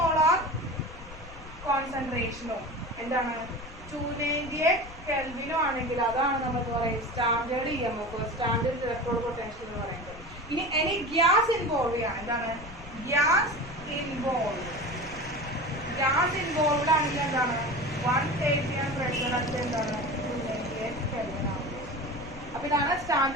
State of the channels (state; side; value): noise; left; rumble, 15 dB below the sound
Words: കോൺസെൻട്രേഷനോ എന്താണ് 298 കെൽവിനോ ആണെങ്കിൽ അതാണ് നമ്മൾ പറയുന്നത് standard EMF, standard electron potential എന്ന് പറയുന്നത്. ഇനി എനി ഗ്യാസ് ഇൻവോൾവ് ചെയ്യാം, എന്താണ് ഗ്യാസ് ഇൻവോൾവ്ഡ് ആണെങ്കിൽ എന്താണ് 1 kg പ്രഷർ അത് എന്താണ് 298 കെൽവിൻ ആണ്. അപ്പൊ ഇതാണ്